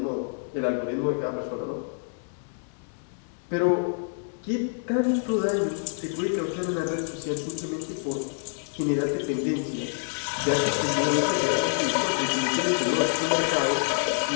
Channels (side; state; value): right; silent; digital silence